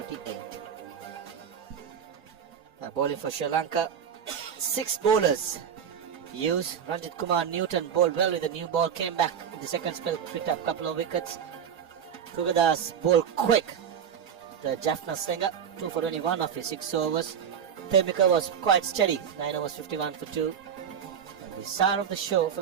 Bowling for Sri Lanka. 6 bowlers. Hughes, Ranjit Kumar, Newton bowled well with the new ball. Came back in the second spell, picked up a couple of wickets. Kugadas bowled quick. The Jaffna Slinger, 2 for 21 of his 6 overs. Temika was quite steady, 9 overs, 51 for 2. And the star of the show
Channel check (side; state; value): left; quieter; 8.0 dB